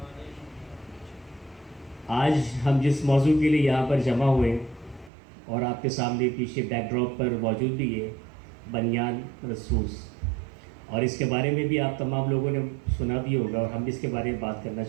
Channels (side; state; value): left; drops out; at 5.1 s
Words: آج ہم جس موضوع کے لیے یہاں پر جمع ہوئے اور آپ کے سامنے پیچھے بیک ڈراپ پر موجود بھی ہے بنیان مرصوص، اور اس کے بارے میں بھی آپ تمام لوگوں نے سنا بھی ہوگا اور ہم بھی اس کے بارے میں بات کرنا